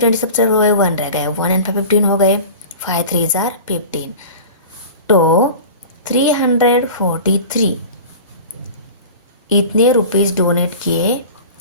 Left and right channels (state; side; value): inverted; both; correlation -0.37